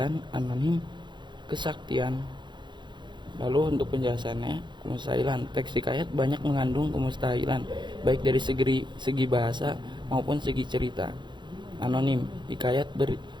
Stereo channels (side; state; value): left; late; 0.22 ms